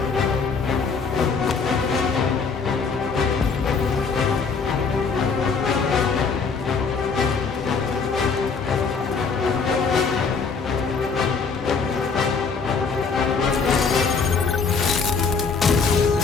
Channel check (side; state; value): right; quieter; 5.2 dB